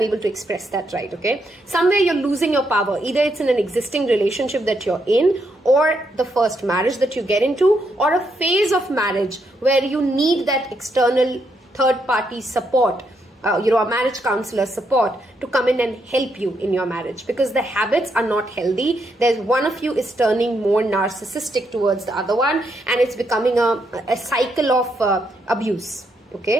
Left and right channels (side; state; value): both; normal; correlation 0.78